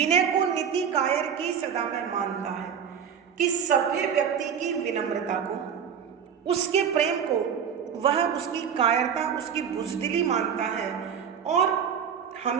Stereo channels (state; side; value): quieter; left; 7.6 dB